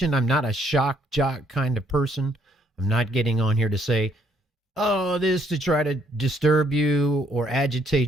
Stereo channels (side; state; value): both; normal; correlation 0.68